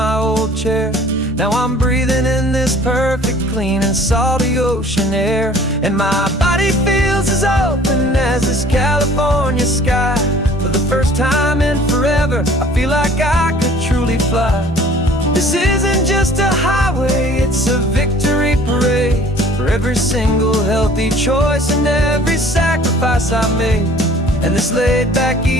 old chair. Now I'm breathing in this perfect, clean and salty ocean air. And my body feels as open as this California sky. For the first time in forever, I feel like I could truly fly. This isn't just a highway, it's a victory parade. For every single healthy choice and every sacrifice I made. And this laid back,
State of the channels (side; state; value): both; normal; correlation 0.51